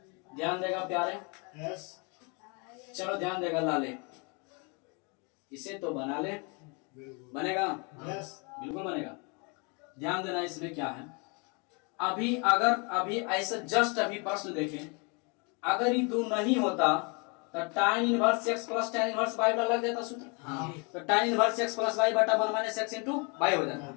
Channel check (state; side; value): quieter; right; 32.9 dB